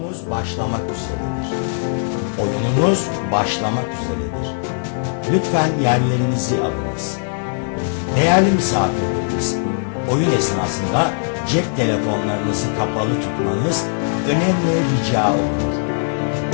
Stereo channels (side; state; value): right; silent; 66 dB below the other